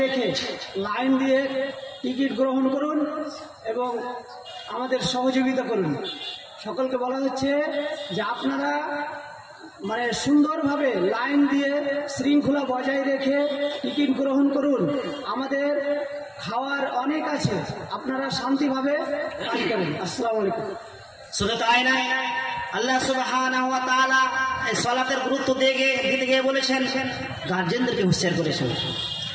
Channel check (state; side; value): identical; both; correlation 1.00